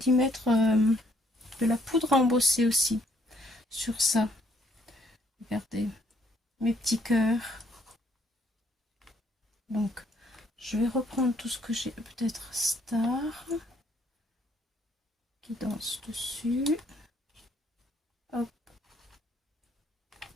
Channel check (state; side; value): normal; both; correlation 0.67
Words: mettre de la poudre à embosser aussi sur ça. Regardez, mes petits cœurs. Donc, je vais reprendre tout ce que j'ai, peut-être Star, qui danse dessus. Hop.